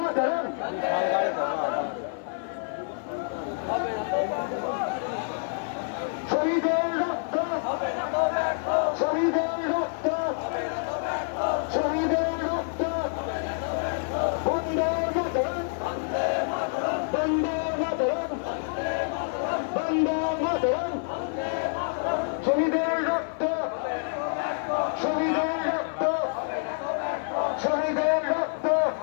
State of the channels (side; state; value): right; silent; 60 dB below the other